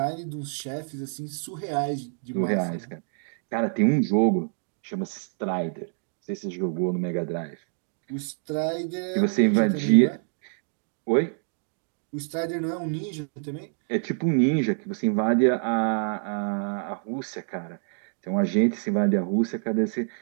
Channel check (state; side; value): silent; left; digital silence